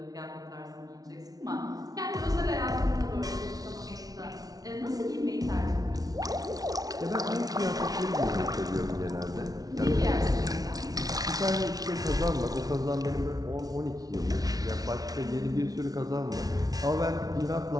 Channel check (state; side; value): late; left; 0.18 ms